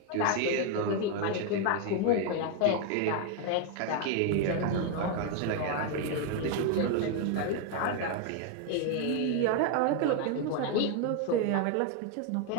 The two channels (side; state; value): both; different; correlation 0.01